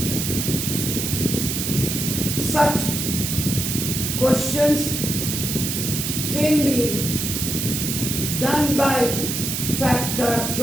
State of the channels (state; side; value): noise; right; hiss, 2 dB below the sound